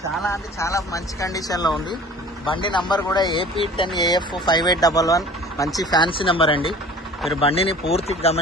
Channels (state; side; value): normal; both; correlation 0.45